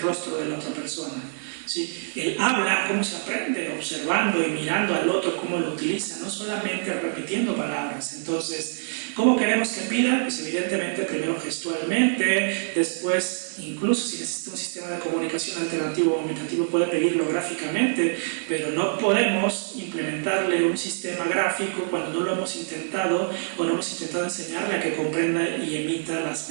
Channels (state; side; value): silent; left; digital silence